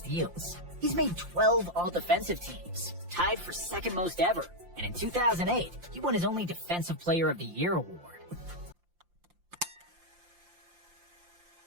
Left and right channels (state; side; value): late; left; 5.7 ms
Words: He's made 12 all-defensive teams, tied for second most ever, and in 2008, he won his only Defensive Player of the Year award.